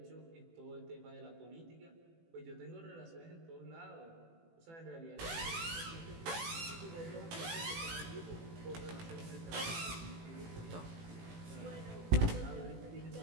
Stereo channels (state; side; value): late; left; 18 ms